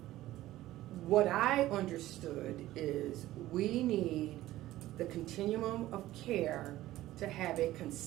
What I understood is we need the continuum of care to have a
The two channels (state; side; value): quieter; left; 15.5 dB